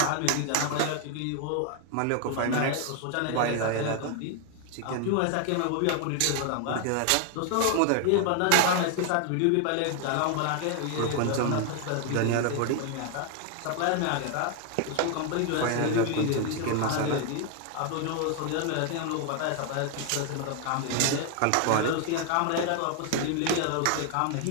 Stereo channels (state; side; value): different; both; correlation 0.00